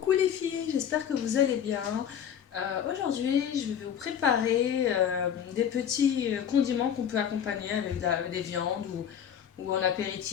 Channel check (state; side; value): quieter; right; 8.8 dB